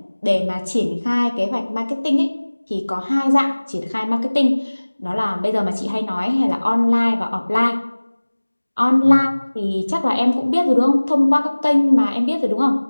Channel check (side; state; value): both; inverted; correlation -1.00